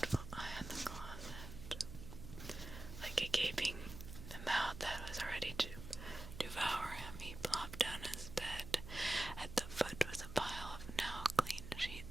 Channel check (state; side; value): noise; right; hum, 11 dB below the sound